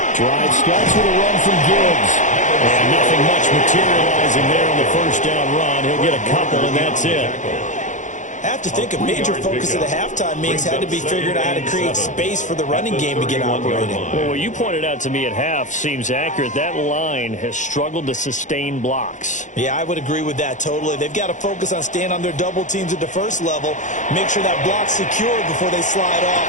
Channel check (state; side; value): late; right; 0.36 ms